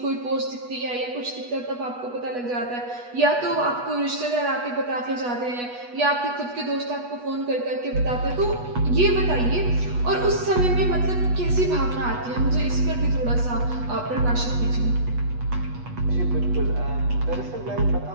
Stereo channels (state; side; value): late; left; 8.2 ms